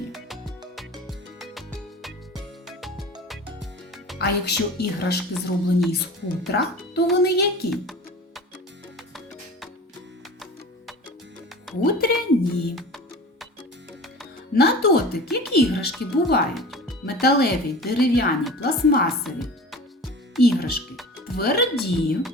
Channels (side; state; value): both; normal; correlation 0.37